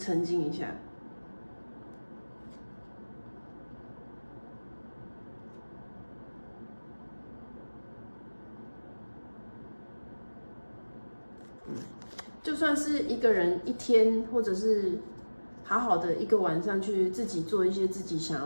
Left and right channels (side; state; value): both; inverted; correlation -1.00